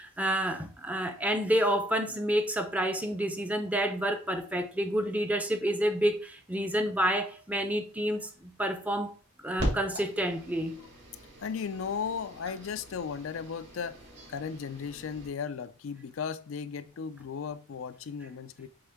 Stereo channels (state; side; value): normal; both; correlation 0.62